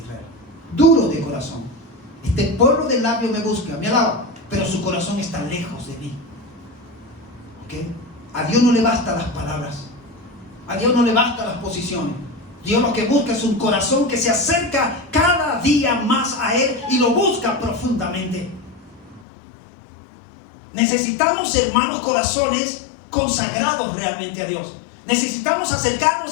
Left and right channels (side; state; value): right; drops out; at 19.2 s